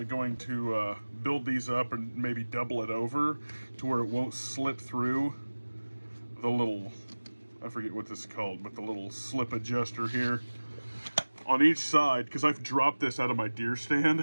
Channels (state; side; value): inverted; both; correlation -1.00